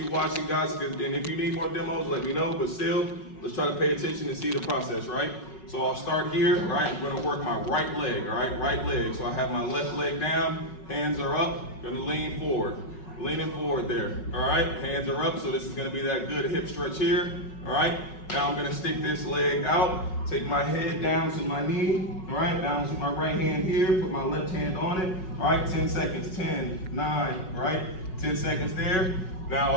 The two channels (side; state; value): right; late; 5.4 ms